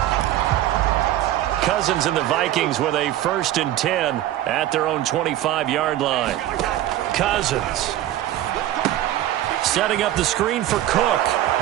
Cousins and the Vikings with a 1st and 10 at their own 25-yard line. Cousins setting up the screen for Cook.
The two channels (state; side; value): quieter; left; 13.4 dB